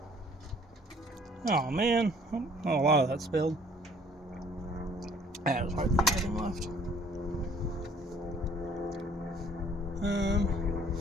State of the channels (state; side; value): normal; both; correlation 0.57